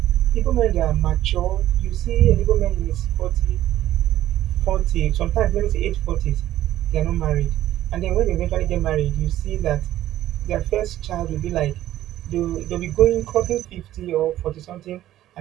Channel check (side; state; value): left; quieter; 13.4 dB